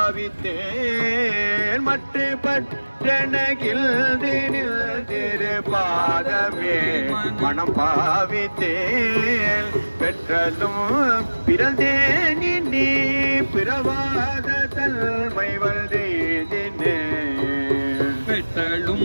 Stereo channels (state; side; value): inverted; both; correlation -1.00